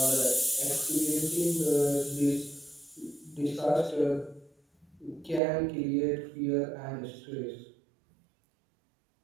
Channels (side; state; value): left; drops out; at 5.4 s